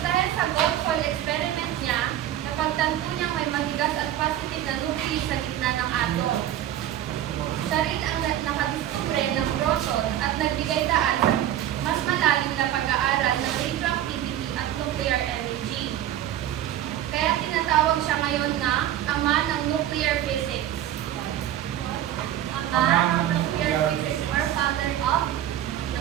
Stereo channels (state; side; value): quieter; left; 12.0 dB